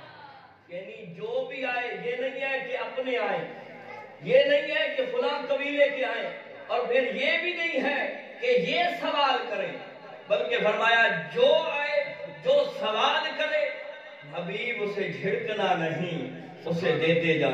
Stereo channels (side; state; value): both; identical; correlation 1.00